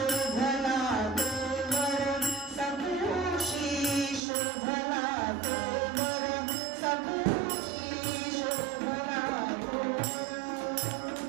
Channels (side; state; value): left; drops out; at 4.2 s